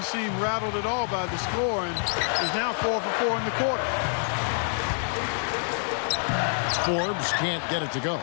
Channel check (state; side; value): silent; right; 60 dB below the other